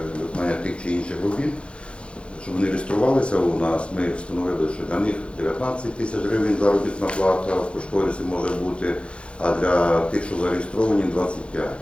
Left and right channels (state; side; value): late; right; 0.058 ms